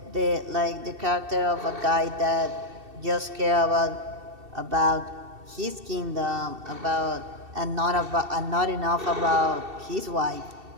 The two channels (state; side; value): late; left; 2.7 ms